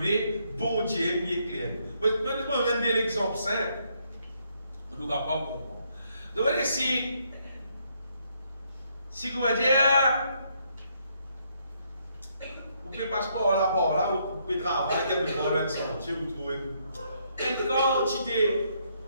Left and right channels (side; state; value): both; inverted; correlation -0.73